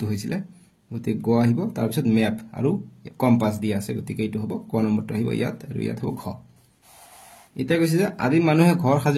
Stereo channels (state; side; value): identical; both; correlation 1.00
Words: হৈছিলে, গতিকে গ আহিব, তাৰপিছত মেপ আৰু কম্পাছ দিয়া আছে, গতিকে এইটো হ'ব ক নম্বৰটো আহিব ইয়াত, আৰু ইয়াত হ'ব ঘ। এতিয়া কৈছে যে আদিম মানুহে ঘৰ